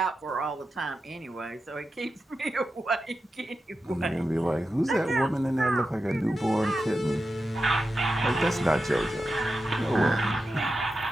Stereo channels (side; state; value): both; normal; correlation 0.90